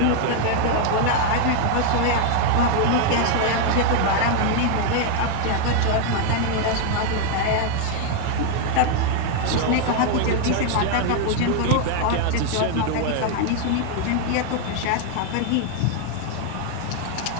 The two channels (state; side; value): different; both; correlation 0.01